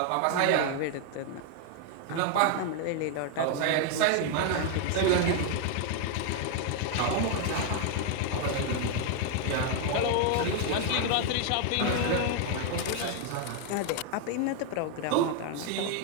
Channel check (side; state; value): both; different; correlation 0.00